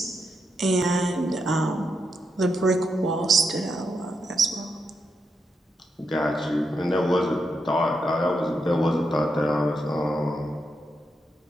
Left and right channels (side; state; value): both; normal; correlation 0.83